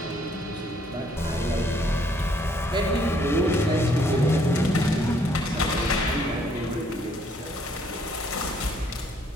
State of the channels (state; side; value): normal; both; correlation 0.66